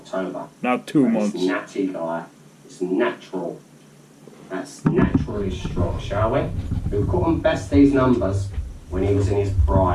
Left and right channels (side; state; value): both; identical; correlation 1.00